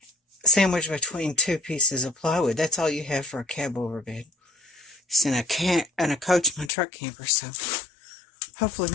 sandwiched between two pieces of plywood. That's all you have for a Cabover bed. It's in a Coachmen truck camper, so hopefully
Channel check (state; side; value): drops out; right; at 6.7 s